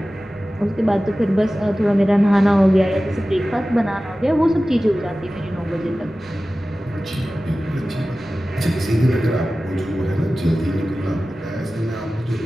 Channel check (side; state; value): both; normal; correlation 0.96